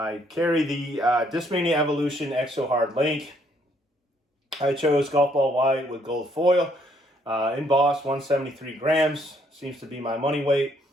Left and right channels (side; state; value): both; normal; correlation 0.68